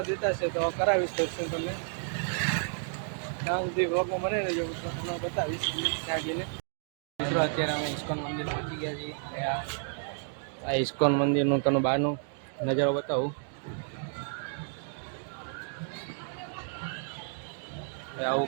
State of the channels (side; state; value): left; silent; 57 dB below the other